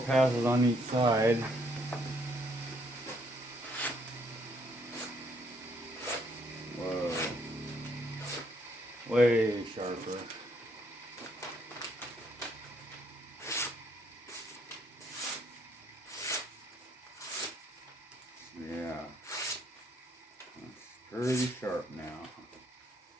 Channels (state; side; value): normal; both; correlation 0.69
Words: on each side. Whoa. Way sharper. Yeah. That's pretty sharp now.